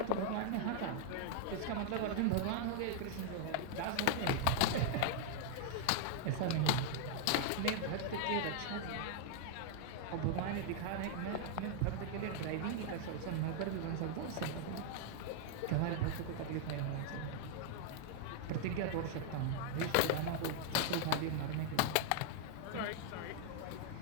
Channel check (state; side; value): different; both; correlation -0.01